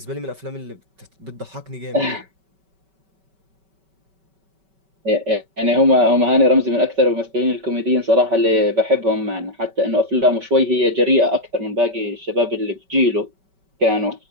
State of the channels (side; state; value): left; late; 5.2 ms